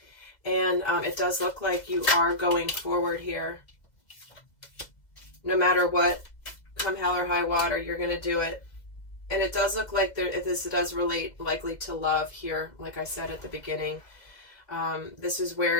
And it does look like you are going forward here. No matter what, come hell or high water, you're going to do it. And it does look like this does relate likely to love here, like I said at the beginning. This is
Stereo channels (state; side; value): late; right; 2.0 ms